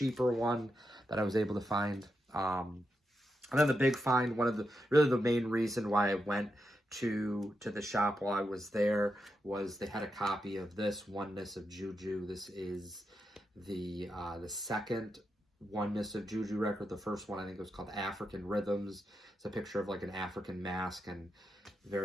one that I was able to find. And then the big find, really the main reason why I went to the shop while I was there, was they had a copy of this Oneness of Juju. This is the second Oneness of Juju record. The first one I think was called African Rhythms. It's a picture of like an African mask and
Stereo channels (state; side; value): normal; both; correlation 0.86